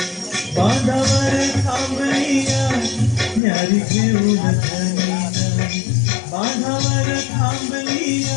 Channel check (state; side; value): drops out; right; at 3.4 s